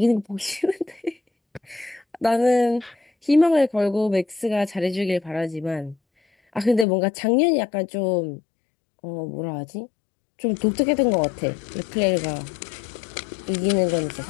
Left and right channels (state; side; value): drops out; right; at 6.9 s